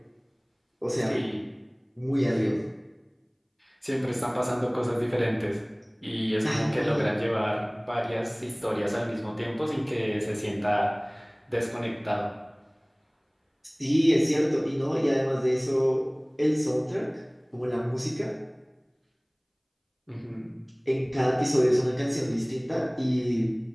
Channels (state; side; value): identical; both; correlation 1.00